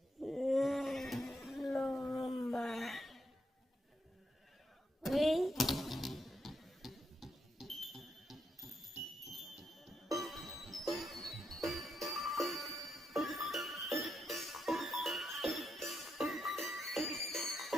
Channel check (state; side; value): normal; both; correlation 0.81